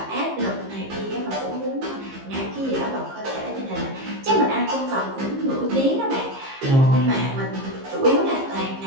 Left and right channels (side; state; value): left; late; 15 ms